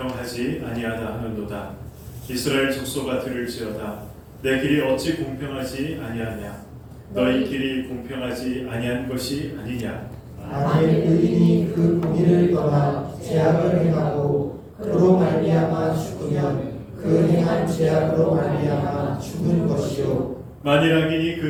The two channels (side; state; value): both; identical; correlation 1.00